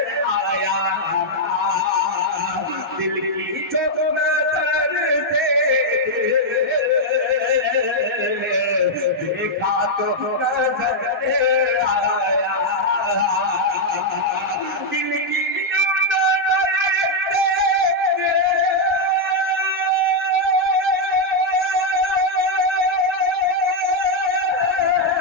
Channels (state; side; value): normal; both; correlation -0.02